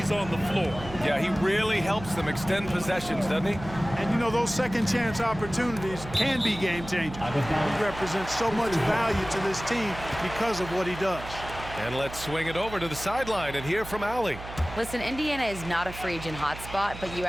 on the floor. Yeah, he really helps them extend possessions, doesn't he? And you know, those second chance opportunities can be game changing. He represents so much value to this team because of what he does. And let's swing it over to the sideline and hear from Allie. Listen, Indiana is not a free agent hotspot, but you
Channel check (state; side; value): noise; right; hum, 12 dB below the sound